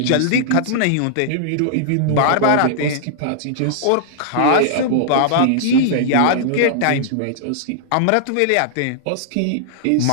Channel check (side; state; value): both; different; correlation -0.01